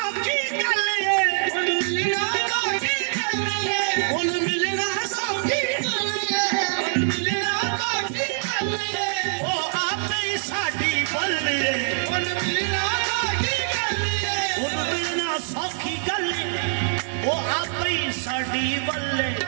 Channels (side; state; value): left; silent; digital silence